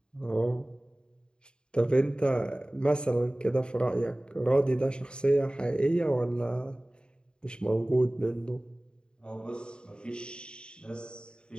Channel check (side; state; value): right; late; 0.050 ms